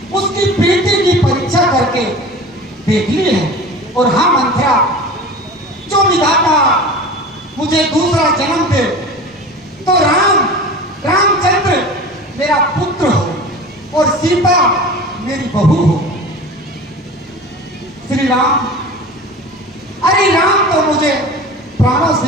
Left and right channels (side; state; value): both; normal; correlation 0.36